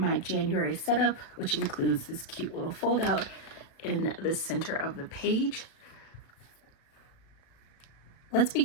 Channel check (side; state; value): right; late; 36 ms